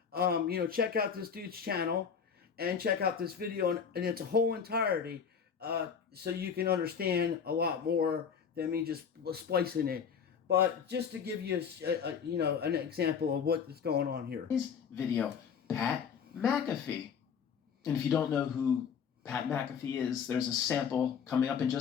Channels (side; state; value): right; quieter; 6.9 dB